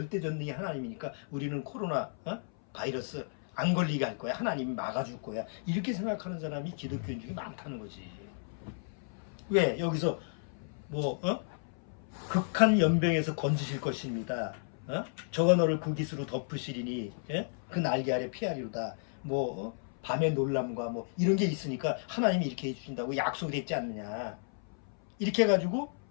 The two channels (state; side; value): silent; right; 56 dB below the other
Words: 하나님이니까 우리는 코로나 바이러스 안 걸리게 할 거야. 하나님이 막아줄 거야. 이렇게 생각하는 사람이 기독교인 중에 많다는 거지. 왜? 여기서 극한 연병에서 건지실 것입니다. 저가 너를 그 깃으로 덮으시리니 그 날개 아래 피하리로다. 밤의 놀람과 이런 게 있으니까 하나님이 이렇게 해주신다고 약속이 됐지 않느냐. 이렇게 해가지고